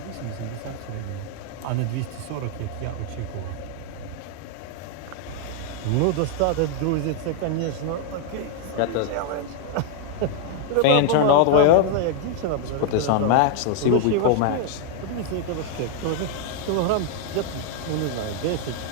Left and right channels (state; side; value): different; both; correlation 0.00